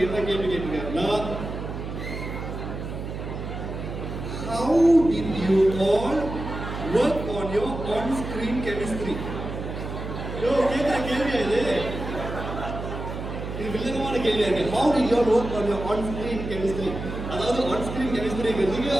என்ன கேள்வி கேட்டிருக்காருன்னா, how did you all work on your on-screen chemistry? கேட்குற கேள்வியா இது? இது வில்லங்கமான கேள்வியா இருக்கு. How did you all work on your on-screen chemistry? அதாவது on-screen chemistry-ங்கிறது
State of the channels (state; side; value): noise; right; hum, 7 dB below the sound